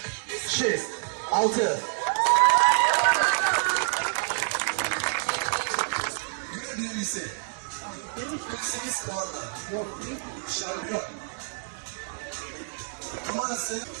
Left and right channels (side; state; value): left; silent; digital silence